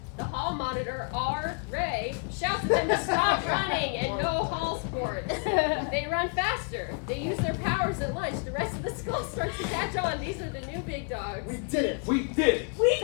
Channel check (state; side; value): quieter; right; 38.1 dB